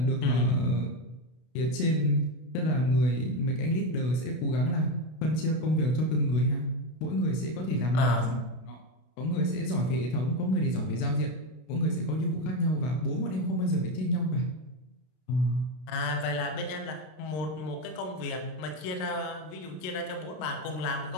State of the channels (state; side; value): late; right; 32 ms